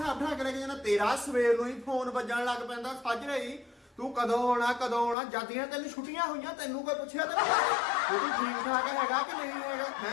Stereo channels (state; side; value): drops out; right; at 5.2 s